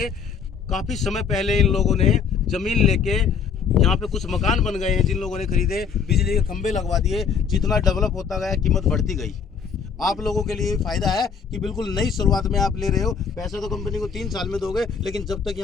काफी समय पहले इन लोगों ने जमीन लेके यहाँ पे कुछ मकान बन गए हैं, जिन लोगों ने खरीदे, बिजली के खंभे लगवा दिए। जितना डेवलप होता गया कीमत बढ़ती गई। आप लोगों के लिए फायदा है कि बिल्कुल नई शुरुआत में आप ले रहे हो। पैसा तो कंपनी को 3 साल में दोगे, लेकिन जब तक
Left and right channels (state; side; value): quieter; right; 6.3 dB